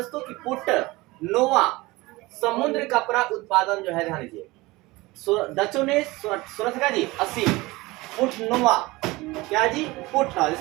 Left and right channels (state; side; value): quieter; left; 21.3 dB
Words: की पुट नोवा समुद्र कपड़ा उत्पादन जो है, ध्यान दीजिए डचों ने 1680 पुट नोवा, क्या जी? पुट,